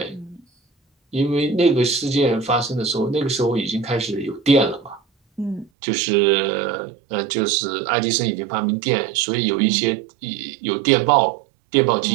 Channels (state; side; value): drops out; left; at 5.7 s